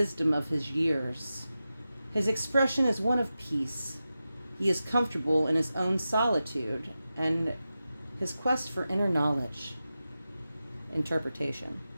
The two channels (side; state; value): both; inverted; correlation -0.92